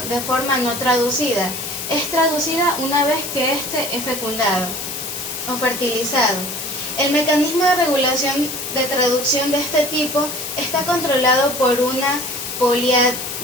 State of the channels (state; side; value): noise; left; hiss, 6 dB below the sound